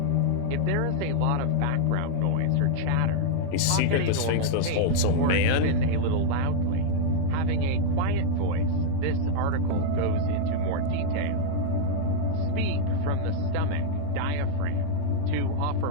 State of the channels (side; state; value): both; different; correlation -0.01